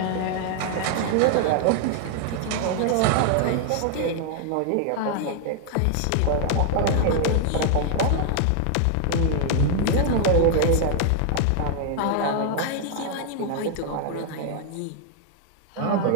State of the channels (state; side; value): different; both; correlation 0.00